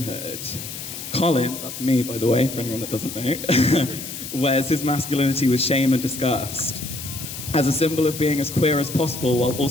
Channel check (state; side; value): noise; left; hiss, 9 dB below the sound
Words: Colin, that's me by the way, for anyone that doesn't know, wears his masculinity with shame and disgust, as a symbol of being as queer as possible while